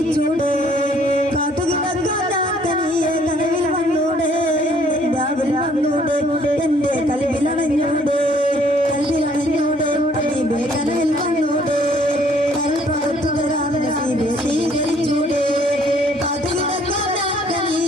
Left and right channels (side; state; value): both; normal; correlation 0.62